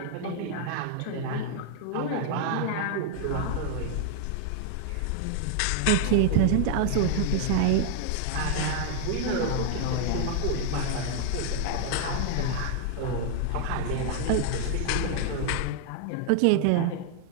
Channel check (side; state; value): both; different; correlation 0.00